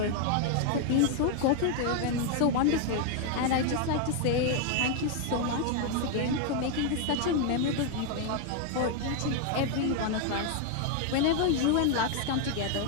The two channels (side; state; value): both; different; correlation 0.00